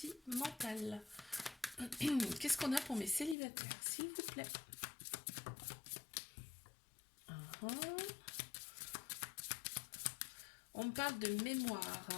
Qu'est-ce qu'on a pour mes célibataires, s'il vous plaît? Uhum. On me parle de mémoire.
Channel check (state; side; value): drops out; right; at 3.4 s